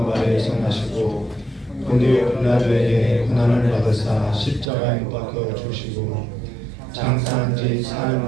아래에서 나시고 본디오 빌라도에게 고난을 받으사 십자가에 못 박혀 죽으시고 장사한 지 사흘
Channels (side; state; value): left; drops out; at 4.7 s